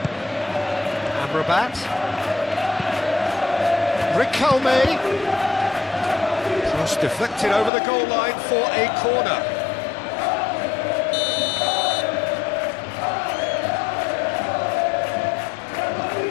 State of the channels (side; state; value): right; drops out; at 7.7 s